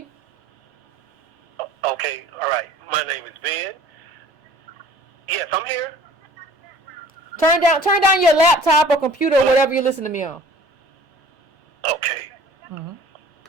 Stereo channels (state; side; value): normal; both; correlation 0.49